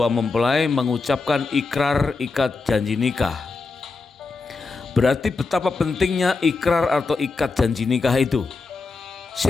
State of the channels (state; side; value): quieter; right; 4.1 dB